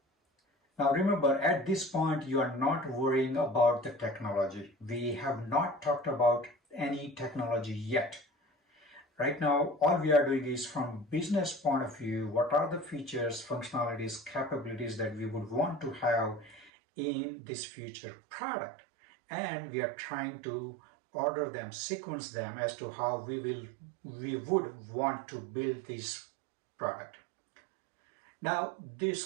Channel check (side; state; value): left; drops out; at 16.7 s